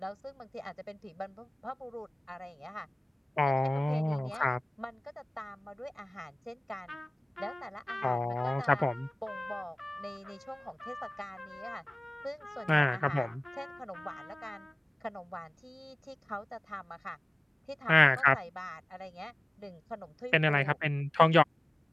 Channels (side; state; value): both; normal; correlation 0.97